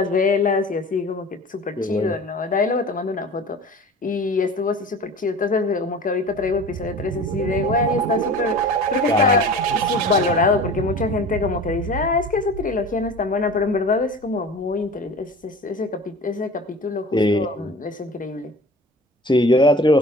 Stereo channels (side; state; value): both; normal; correlation 0.39